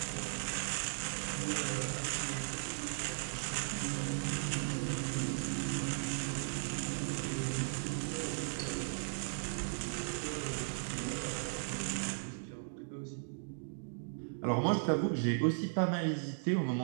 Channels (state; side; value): silent; left; digital silence